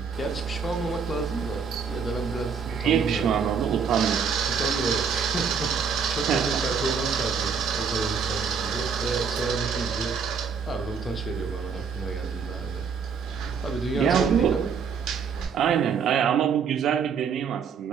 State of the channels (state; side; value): quieter; left; 6.2 dB